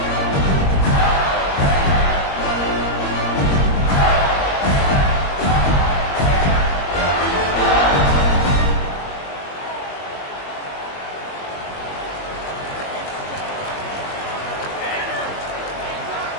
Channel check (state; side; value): late; right; 21 ms